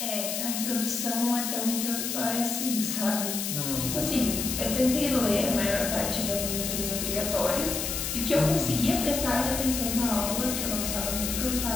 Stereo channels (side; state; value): left; noise; hiss, 2 dB below the sound